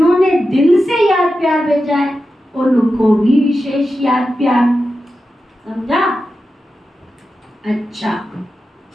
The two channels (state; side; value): normal; both; correlation 0.91